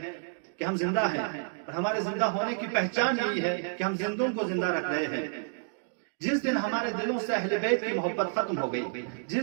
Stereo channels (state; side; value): silent; left; digital silence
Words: کہ ہم زندہ ہیں، اور ہمارے زندہ ہونے کی پہچان یہی ہے کہ ہم زندوں کو زندہ رکھ رہے ہیں۔ جس دن ہمارے دلوں سے اہل بیت کی محبت ختم ہو گئی،